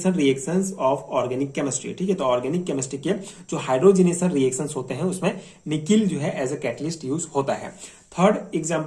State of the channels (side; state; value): both; identical; correlation 1.00